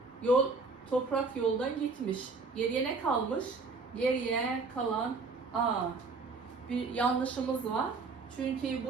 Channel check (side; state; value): left; quieter; 4.2 dB